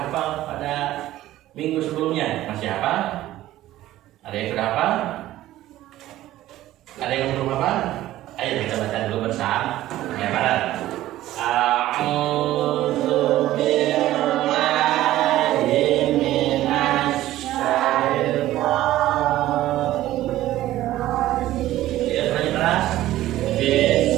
Ada yang belum apa? Ayo kita baca dulu bersama. Ya, bareng. A'udzu billahi minasy syaithanir rajim. Ya, tadi keras.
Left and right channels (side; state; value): left; quieter; 14.7 dB